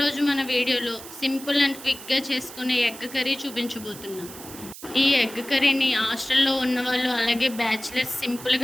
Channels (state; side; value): noise; right; hiss, 14 dB below the sound